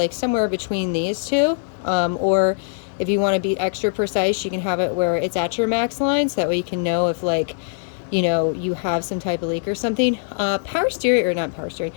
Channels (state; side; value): silent; right; digital silence